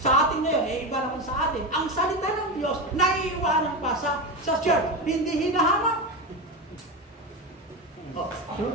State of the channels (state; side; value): normal; both; correlation 0.18